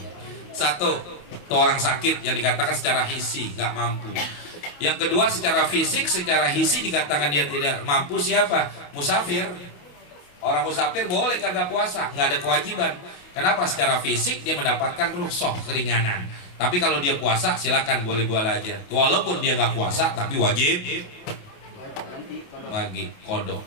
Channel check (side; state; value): right; late; 28 ms